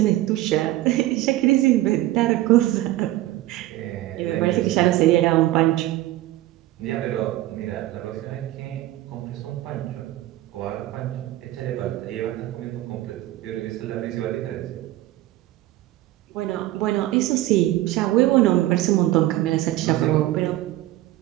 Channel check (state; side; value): quieter; left; 15.9 dB